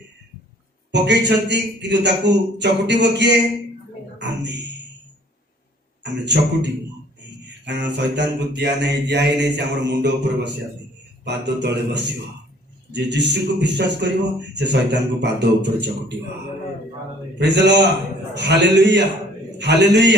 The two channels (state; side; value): normal; both; correlation 0.55